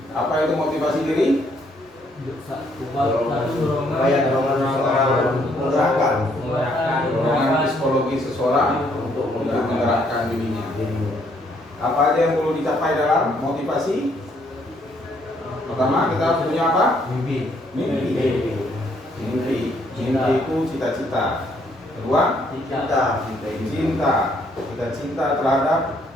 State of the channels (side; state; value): both; normal; correlation 0.69